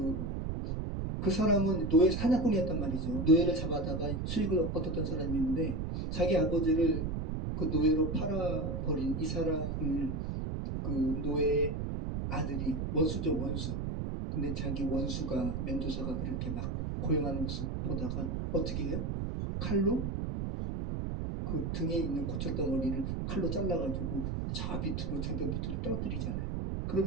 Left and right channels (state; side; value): noise; right; rumble, 2 dB below the sound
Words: 사람은 노예 사냥꾼이었단 말이죠. 노예를 잡아다가 수익을 얻었던 사람인데 자기 아버지를 그 노예로 팔아버린 이 사람을 그 노예 아들이 원수죠, 원수. 근데 자기 원수가 멘도사가 그렇게 막 고용하는 모습 보다가 어떻게 해요? 칼로 그 등에 있는 고철덩어리를 칼로 잘라가지고 저 밑으로 절벽 밑으로 떨어뜨리잖아요.